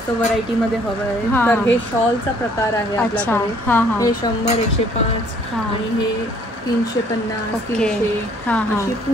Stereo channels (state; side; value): normal; both; correlation 0.60